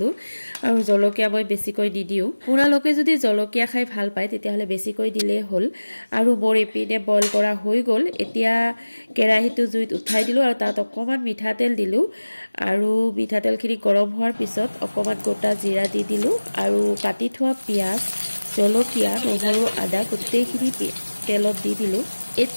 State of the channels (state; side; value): inverted; both; correlation -1.00